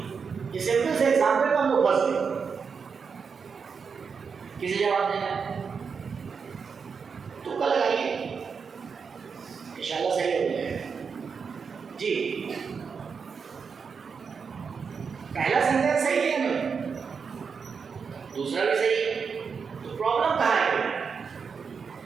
یہ سمپل سے ایگزامپل کو ہم لوگ پھنس گئے. کسی جواب دینا ہے تو کل لگائیے, انشاءاللہ صحیح ہو جائے گا. جی پہلا سینٹینس صحیح ہے نا, دوسرا بھی صحیح ہے, تو پرابلم کہاں ہے.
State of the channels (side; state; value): left; quieter; 5.8 dB